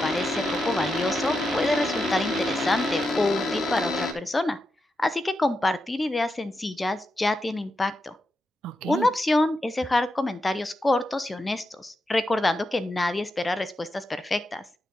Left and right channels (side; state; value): both; normal; correlation 0.87